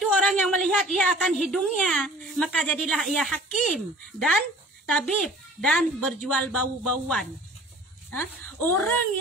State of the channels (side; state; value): both; normal; correlation 0.47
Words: orang yang melihat ia akan hidungnya, maka jadilah ia hakim dan tabib dan berjual bau-bauan. Orang